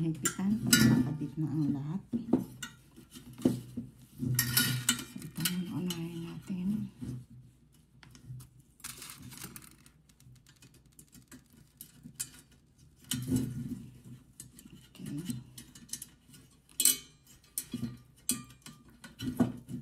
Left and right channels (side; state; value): both; identical; correlation 1.00